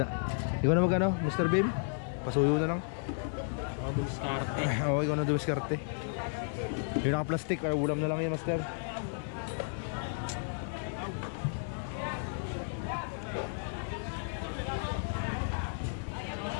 Ikaw na magano, Mr. Bim? Pasuyo na lang. Dumiskarte. Oo, ikaw na dumiskarte. Yung naka-plastic, ulam na lang yan, Master.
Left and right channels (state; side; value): silent; right; digital silence